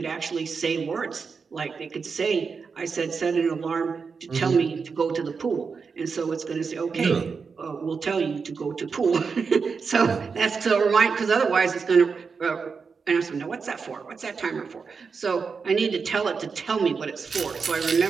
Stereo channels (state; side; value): quieter; left; 5.3 dB